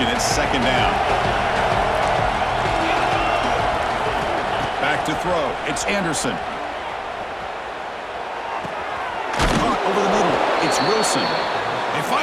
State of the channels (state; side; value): identical; both; correlation 1.00